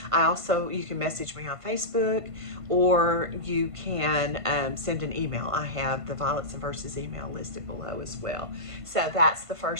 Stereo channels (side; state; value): left; late; 1.5 ms